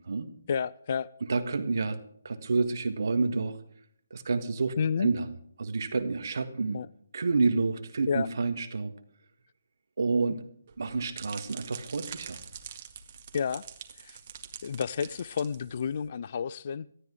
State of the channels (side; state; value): both; inverted; correlation -0.86